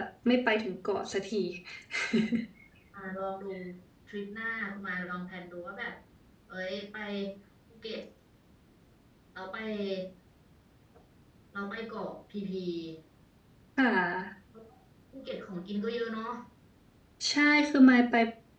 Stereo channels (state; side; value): identical; both; correlation 1.00